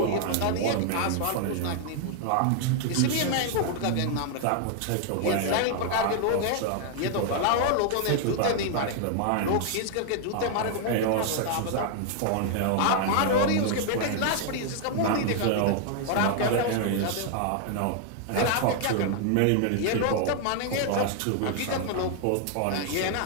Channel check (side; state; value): both; different; correlation 0.00